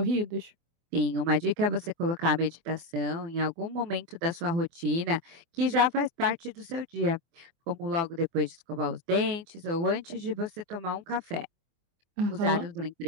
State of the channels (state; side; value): late; left; 24 ms